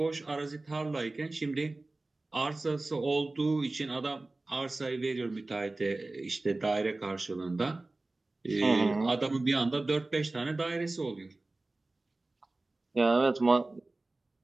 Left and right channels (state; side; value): quieter; left; 3.0 dB